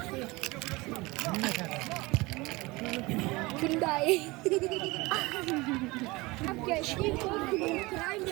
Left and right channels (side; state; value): left; quieter; 22.9 dB